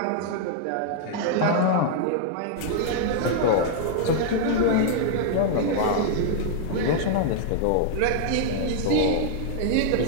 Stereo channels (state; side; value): different; both; correlation 0.00